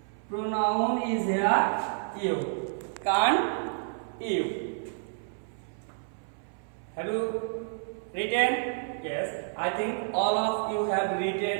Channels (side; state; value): left; silent; 58 dB below the other